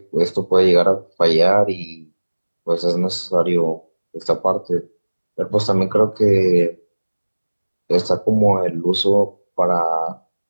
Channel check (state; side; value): inverted; both; correlation -1.00